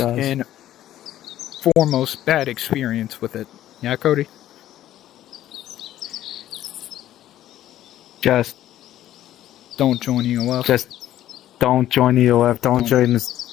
and foremost bad experience with it. Yeah, Cody? Just don't join EOF. Just don't join EOF. Don't join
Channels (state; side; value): quieter; right; 12.9 dB